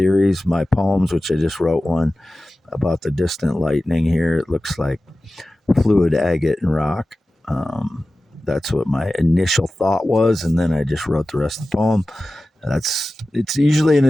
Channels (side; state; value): both; normal; correlation 0.95